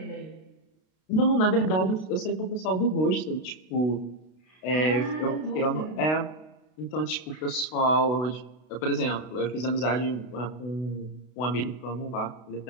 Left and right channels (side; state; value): right; late; 32 ms